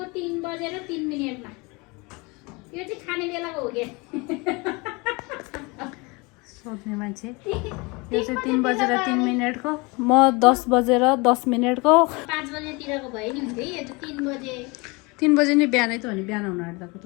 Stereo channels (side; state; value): right; quieter; 26.9 dB